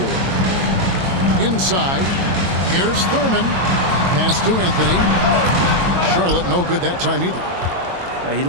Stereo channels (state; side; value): late; left; 22 ms